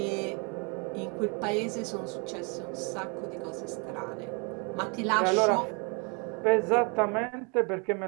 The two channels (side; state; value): left; quieter; 33.9 dB